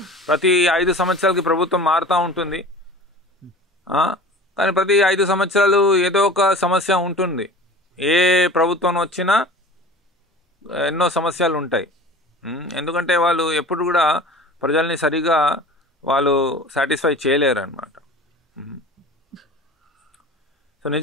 ప్రతి 5 సంవత్సరాలకి ప్రభుత్వం మారుతూ ఉంటుంది. కానీ ప్రతి 5 సంవత్సరాలు ఏదో ఒక సమస్య ఉంటుంది. ఏ ప్రభుత్వం వచ్చినా ఎన్నో సమస్యలు ఉంటాయి. ఎందుకంటే వాళ్ళు ఎప్పుడు కూడా ప్రజల్ని సరిగా వాళ్ళు సాటిస్ఫై చేయలేరు అన్నమాట. సో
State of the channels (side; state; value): both; normal; correlation 0.40